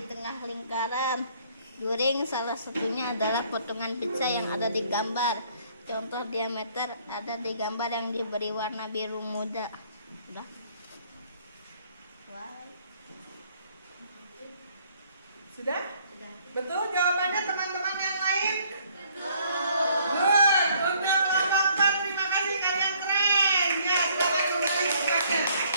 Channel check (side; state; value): both; inverted; correlation -0.63